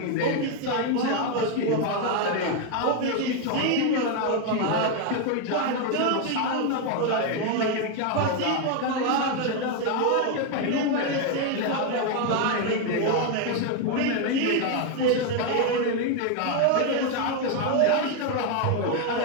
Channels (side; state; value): both; different; correlation 0.01